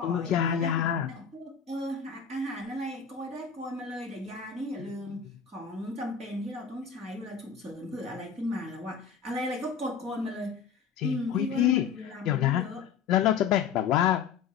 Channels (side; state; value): right; quieter; 7.0 dB